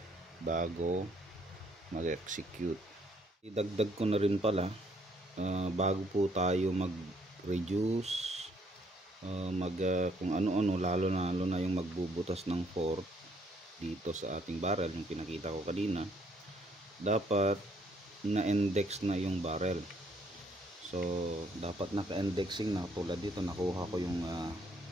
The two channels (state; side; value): normal; both; correlation 0.67